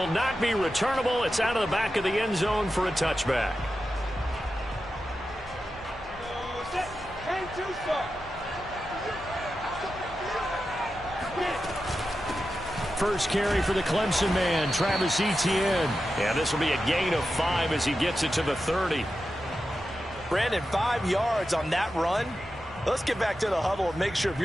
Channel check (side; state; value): both; normal; correlation 0.91